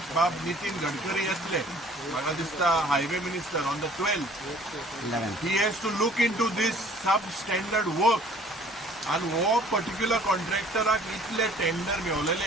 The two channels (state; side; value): normal; both; correlation 0.53